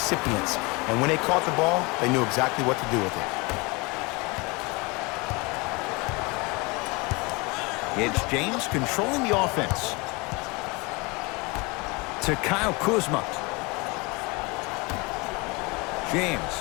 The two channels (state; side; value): quieter; right; 26.9 dB